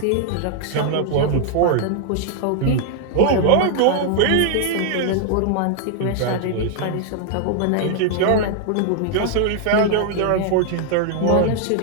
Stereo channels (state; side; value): different; both; correlation 0.00